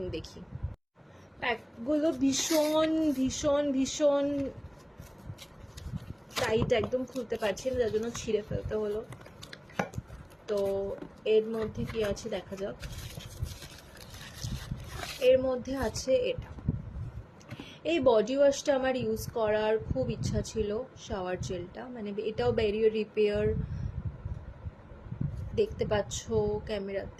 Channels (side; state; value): both; identical; correlation 1.00